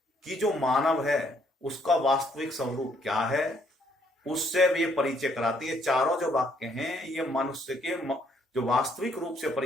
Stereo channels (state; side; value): normal; both; correlation 0.68